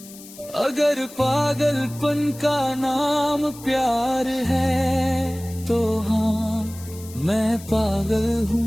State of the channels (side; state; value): left; noise; hiss, 18 dB below the sound